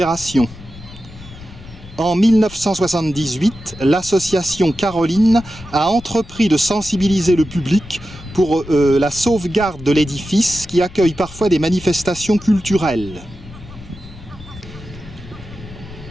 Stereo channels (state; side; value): noise; left; rumble, 18 dB below the sound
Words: En 1978, l'association Caroline a entrepris de sensibiliser le public pour la sauvegarde de l'édifice qui accueille parfois des manifestations culturelles.